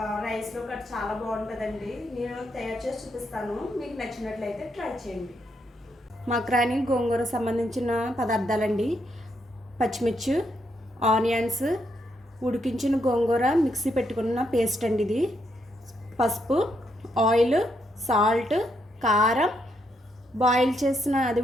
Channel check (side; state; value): both; normal; correlation 0.78